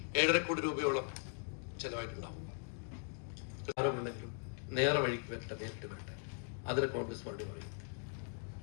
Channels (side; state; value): right; silent; 51 dB below the other